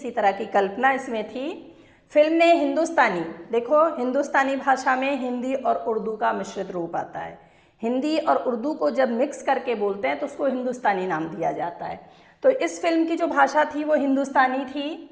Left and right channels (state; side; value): identical; both; correlation 1.00